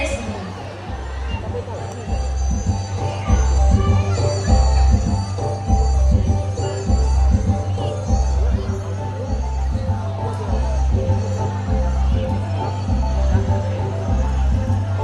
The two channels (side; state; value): both; identical; correlation 1.00